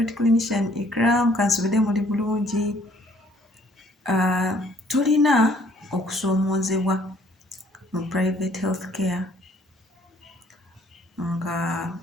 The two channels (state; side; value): normal; both; correlation 0.61